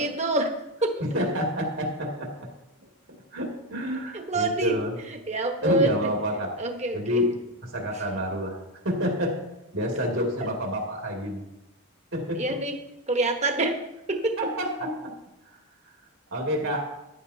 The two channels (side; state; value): both; normal; correlation 0.10